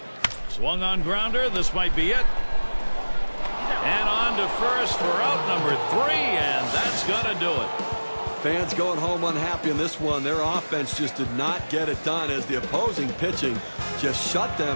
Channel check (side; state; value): both; inverted; correlation -1.00